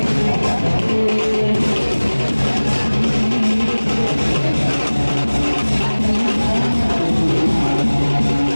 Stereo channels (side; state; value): both; inverted; correlation -1.00